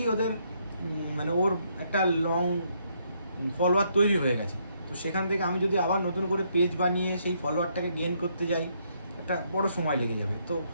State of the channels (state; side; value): inverted; both; correlation -0.73